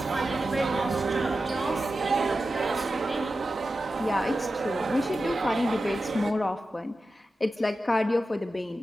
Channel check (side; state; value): both; normal; correlation 0.92